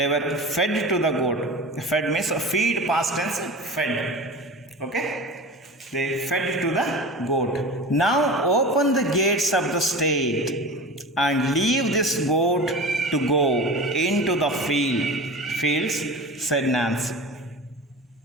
were fed to the goat. Fed means feed, past tense, fed. Okay? They fed to the goat. Now open the gates of the state and leave this goat to go into the fields, said Nancy.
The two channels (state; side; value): normal; both; correlation 0.33